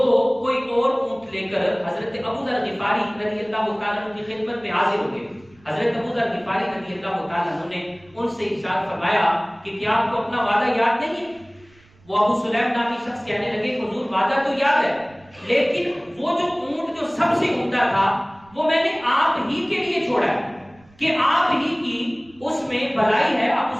کوئی اور اونٹ لے کر حضرت ابو ذر غفاری رضی اللہ تعالیٰ عنہ کی خدمت میں حاضر ہو گئے۔ حضرت ابو ذر غفاری رضی اللہ تعالیٰ عنہ نے ان سے ارشاد فرمایا کہ کیا آپ کو اپنا وعدہ یاد نہیں ہے؟ وہ ابو سلیم نامی شخص کہنے لگے کہ حضور وعدہ تو یاد ہے، لیکن وہ جو اونٹ جو سب سے عمدہ تھا وہ میں نے آپ ہی کے لیے چھوڑا ہے کہ آپ ہی کی اس میں بھلائی ہے، آپ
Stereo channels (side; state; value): right; noise; rumble, 29 dB below the sound